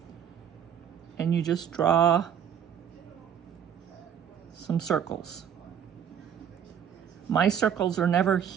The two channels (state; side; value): quieter; left; 8.6 dB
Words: and you just draw some circles. My circles are never